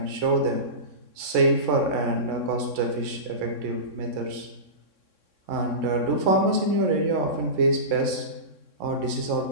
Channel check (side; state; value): left; late; 3.6 ms